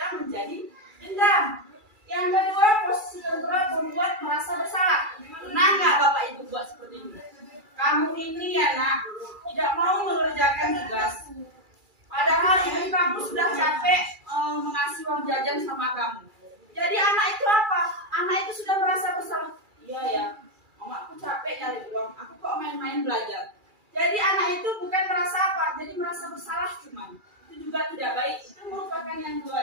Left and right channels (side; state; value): left; late; 2.3 ms